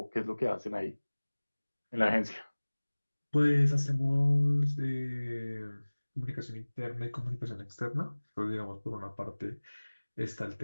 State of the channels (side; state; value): both; inverted; correlation -1.00